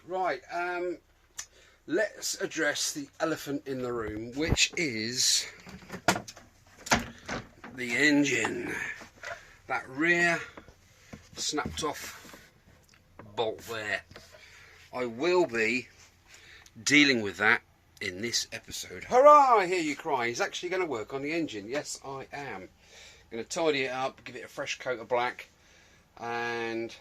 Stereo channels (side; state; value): both; identical; correlation 1.00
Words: Right, let's address the elephant in the room, which is the engine. That rear snapped off bolt there. I will be dealing with that in this episode. Hurrah! I hear you cry. He's actually going to work on the engine. Yes, I am. Going to tidy it up, give it a fresh coat of black, and